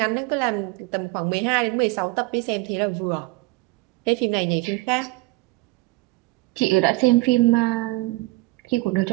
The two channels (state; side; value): quieter; left; 21.9 dB